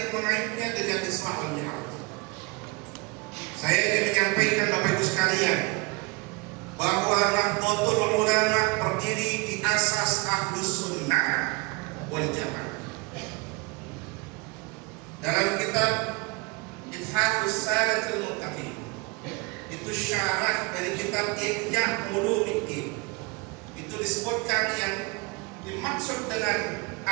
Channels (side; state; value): left; quieter; 27.4 dB